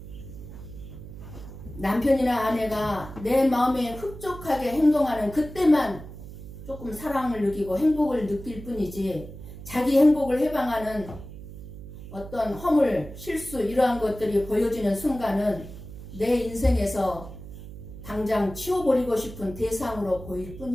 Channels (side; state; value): right; noise; hum, 13 dB below the sound